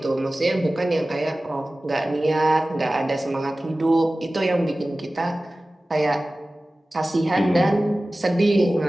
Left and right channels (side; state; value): both; normal; correlation 0.97